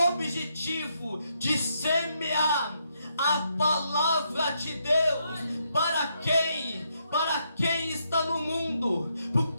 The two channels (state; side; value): inverted; both; correlation -0.77